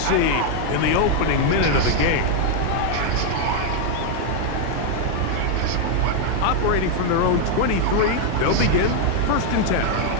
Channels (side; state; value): both; different; correlation 0.00